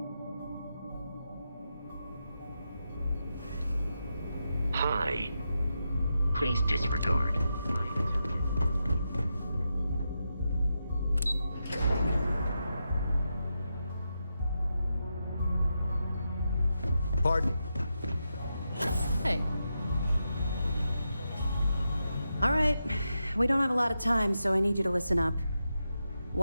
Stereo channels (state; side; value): inverted; both; correlation -0.87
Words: Hi. Please disregard. Pardon? Hey. All right. We don't have a lot of time, so I need you to listen up.